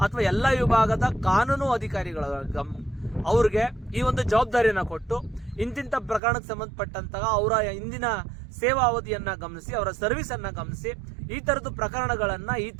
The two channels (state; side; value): drops out; left; at 6.2 s